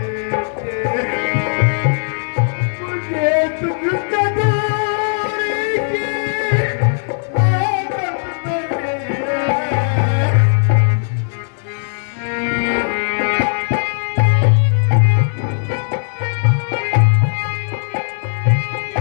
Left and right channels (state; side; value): silent; right; digital silence